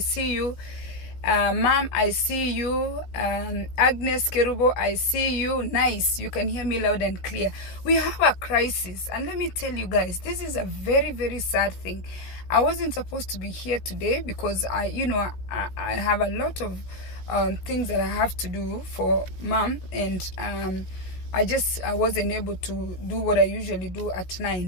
you. Mom, I see you. Agnes Kerubo, I see you. Nice. You can hear me loud and clear. We have a crisis. And let me tell you guys, this is a very, very sad thing. I wasn't supposed to be here today because I have a lot of things that I have to do for Mom, and I wasn't able to do what I usually do at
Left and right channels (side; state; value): right; late; 16 ms